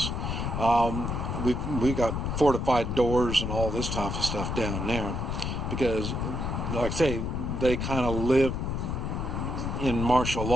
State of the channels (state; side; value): noise; left; rumble, 2 dB below the sound